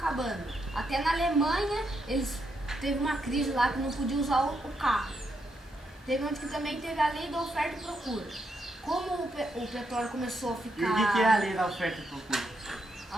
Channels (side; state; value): both; normal; correlation 0.80